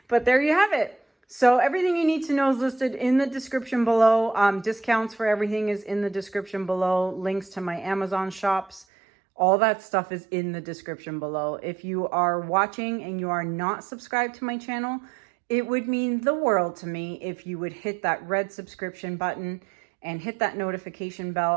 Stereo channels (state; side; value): drops out; left; at 8.8 s